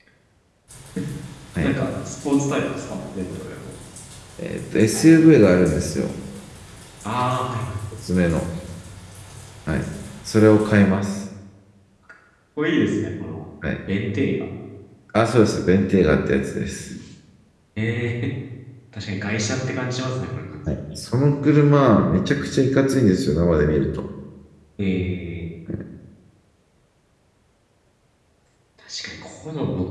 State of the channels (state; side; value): identical; both; correlation 1.00